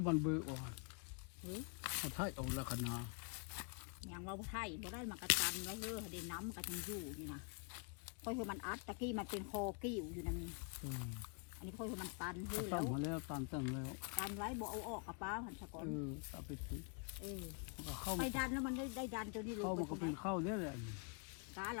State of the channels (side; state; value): right; quieter; 38.5 dB